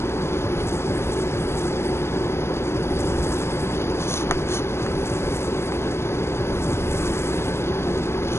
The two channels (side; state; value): right; late; 0.12 ms